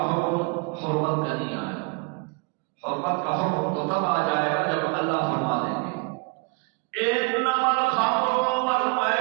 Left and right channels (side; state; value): left; quieter; 31.5 dB